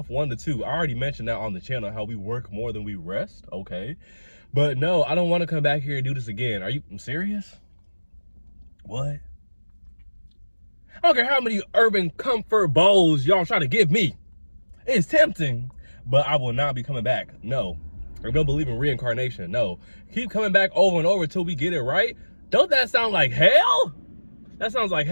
1 to 2. I already mentioned that on the channel, how we work more than we rest, okay? But no, I don't want to come back here and do this again. Are you serious? What? I don't care how many urban comfort bowls y'all try to give me. It's tempting, but I will not be coming back. No. I don't believe in reincarnation. No. Keep coming back over and over until we get it right. Don't that sound like hell? That sounds like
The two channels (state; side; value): inverted; both; correlation -1.00